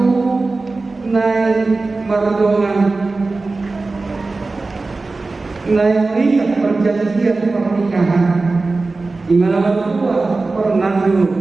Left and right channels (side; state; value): left; quieter; 3.6 dB